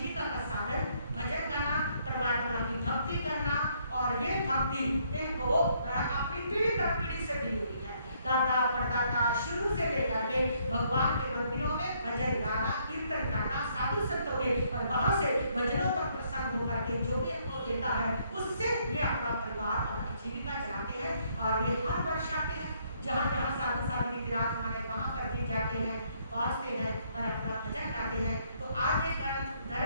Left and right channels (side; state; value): both; inverted; correlation -0.69